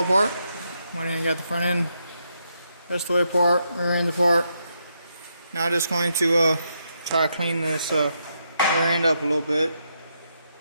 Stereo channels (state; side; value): inverted; both; correlation -0.80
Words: apart. Went in and got the front end rest of the way apart, rear end apart. Now just going to try to clean this rear end up a little bit.